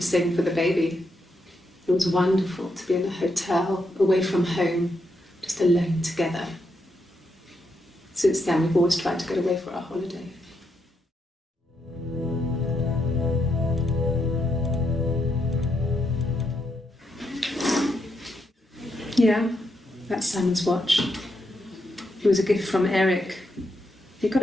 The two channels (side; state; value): both; normal; correlation 0.81